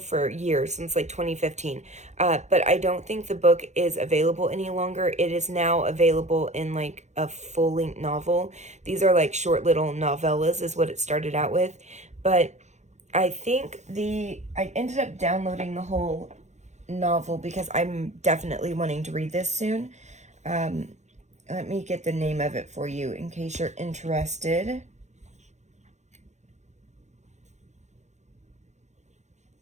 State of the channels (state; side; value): late; left; 0.33 ms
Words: years, since like 2015. But I don't think the book is available any longer. It is now available in like a full-length novel. These are like short little novellas is what it started out with. But I think I ended up downloading the whole novel because I'm definitely wanting to read this soon. Let me get the name of it for you in case you're interested.